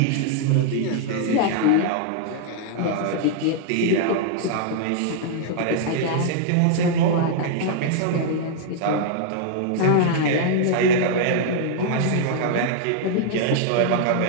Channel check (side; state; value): both; different; correlation -0.01